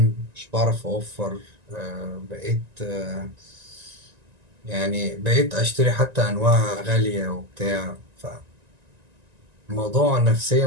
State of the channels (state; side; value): late; left; 1.9 ms